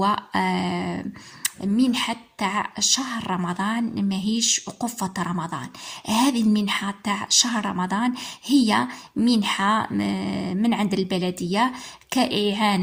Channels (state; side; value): identical; both; correlation 1.00